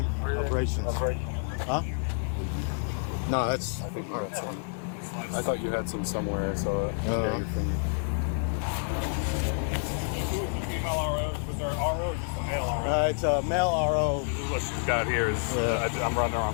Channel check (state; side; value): silent; right; 59 dB below the other